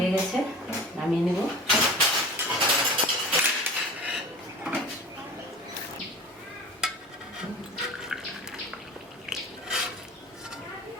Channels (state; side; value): normal; both; correlation 0.37